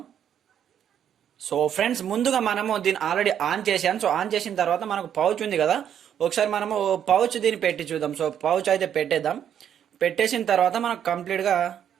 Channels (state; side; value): quieter; left; 9.3 dB